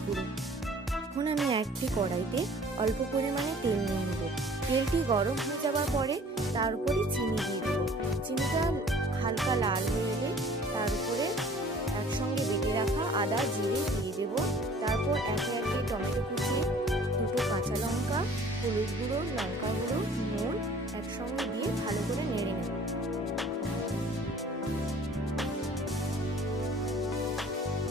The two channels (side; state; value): both; normal; correlation 0.51